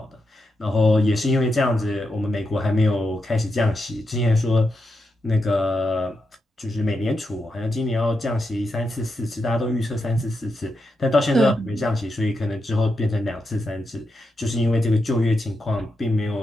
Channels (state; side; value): normal; both; correlation 0.85